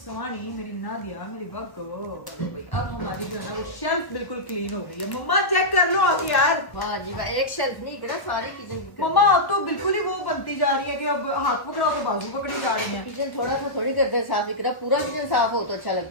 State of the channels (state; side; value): late; right; 1.0 ms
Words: मेरी नादिया, मेरी बग्गो। अब हमारी जो है ना वो शेल्फ बिल्कुल क्लीन हो गई है। मम्मा चेक कर लो आके यार। वाह जी वाह, एक शेल्फ नहीं करा, सारी किचन की। मम्मा अब तो बिल्कुल ही वो बनती जा रही है कि अब हाथ पकड़ाओ तो बाजू पकड़ी जा रही है। किचन थोड़ा सा थोड़ी करते हैं साफ, इकरा पूरा किचन साफ हो तो अच्छा